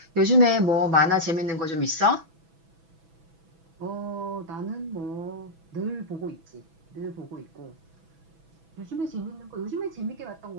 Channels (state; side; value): late; left; 6.1 ms